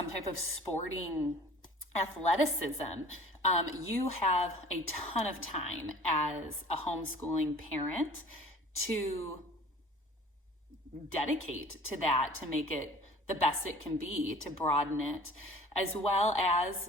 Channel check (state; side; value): normal; both; correlation 0.47